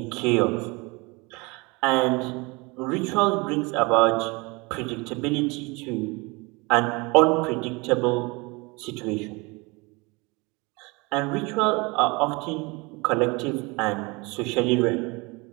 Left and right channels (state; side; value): quieter; left; 26.5 dB